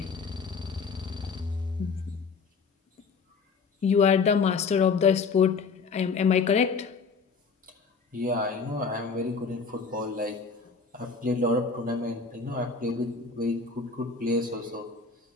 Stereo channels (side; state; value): right; quieter; 4.9 dB